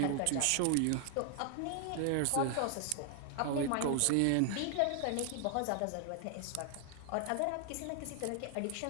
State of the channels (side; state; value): both; different; correlation 0.00